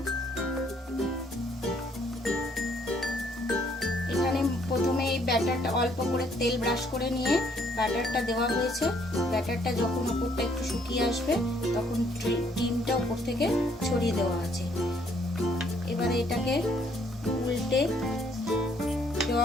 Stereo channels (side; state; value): both; normal; correlation 0.66